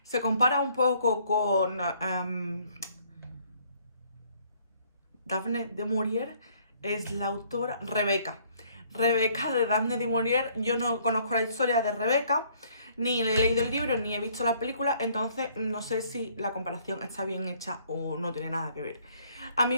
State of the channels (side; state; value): both; inverted; correlation -0.63